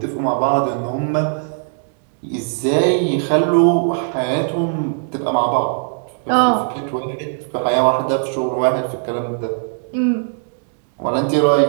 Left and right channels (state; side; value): silent; left; digital silence